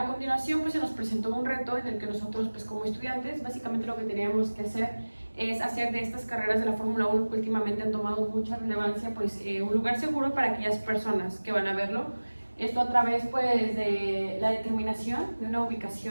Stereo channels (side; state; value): both; inverted; correlation -1.00